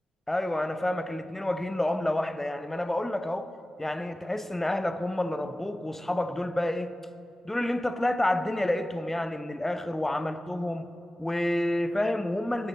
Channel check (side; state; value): both; normal; correlation 0.96